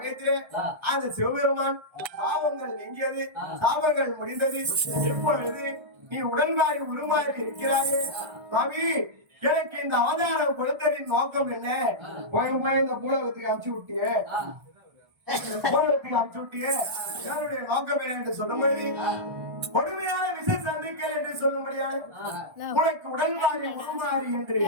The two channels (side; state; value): left; late; 1.3 ms